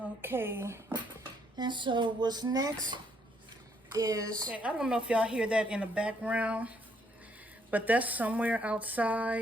Okay, and so what's next is, okay, I don't know if y'all hear that in the background, but that's somewhere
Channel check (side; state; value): both; normal; correlation 0.70